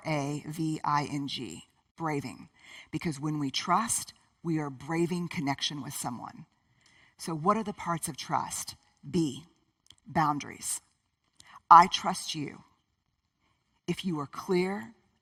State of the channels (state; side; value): identical; both; correlation 1.00